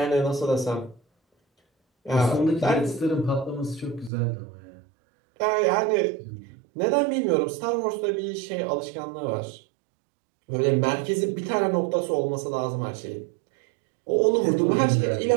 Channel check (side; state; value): left; drops out; at 4.1 s